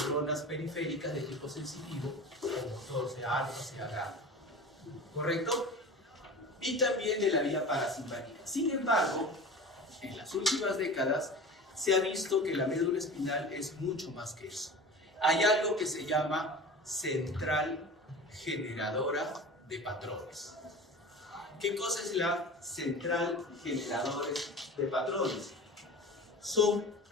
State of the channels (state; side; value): normal; both; correlation 0.35